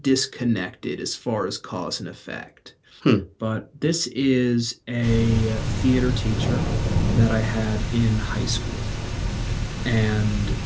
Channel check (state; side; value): identical; both; correlation 1.00